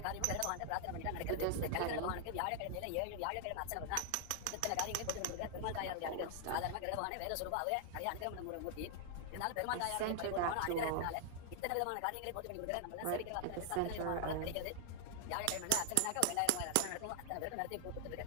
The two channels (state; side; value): different; both; correlation 0.00